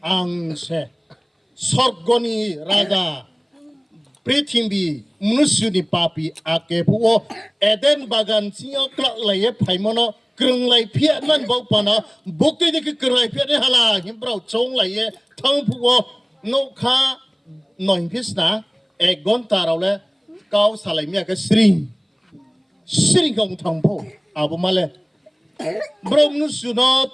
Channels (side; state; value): both; identical; correlation 1.00